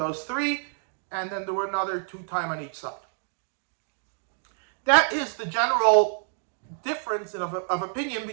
3, and then there were another 2 time on each side. That is the general difference of opinion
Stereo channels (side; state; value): left; silent; digital silence